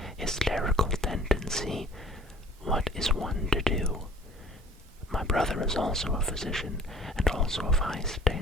hysterical tendency, what is one to do? My brother is also a physician, and also of high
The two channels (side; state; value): both; normal; correlation 0.51